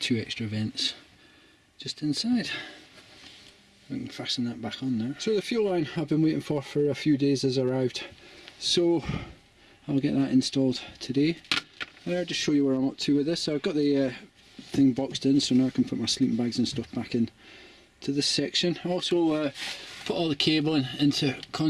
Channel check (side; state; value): both; identical; correlation 1.00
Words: extra vents just inside. I can fasten that back on now. So the fuel line I've been waiting for a few days has arrived, so I'll get that installed today. I'll just show you where I'm up to with this. So I've got the thing boxed in, so now I can put my sleeping bags and stuff back in to this section. I also put all the cabling into